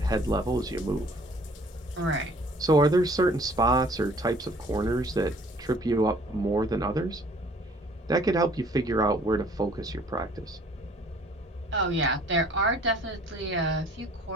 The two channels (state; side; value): normal; both; correlation 0.55